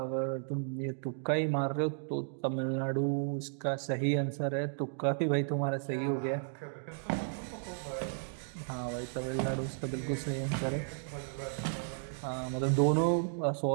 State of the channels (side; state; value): left; silent; digital silence